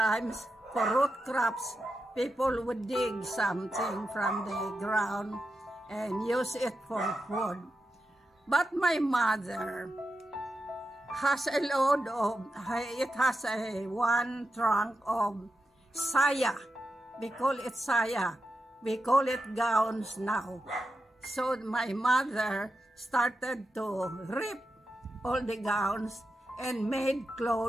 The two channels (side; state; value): both; normal; correlation 0.89